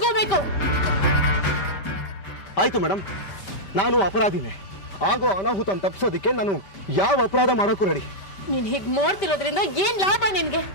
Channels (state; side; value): late; right; 5.1 ms